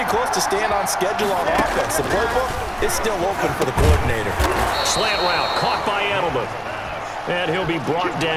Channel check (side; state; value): both; identical; correlation 1.00